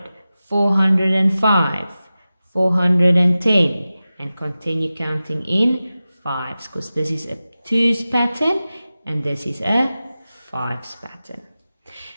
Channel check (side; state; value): both; inverted; correlation -0.95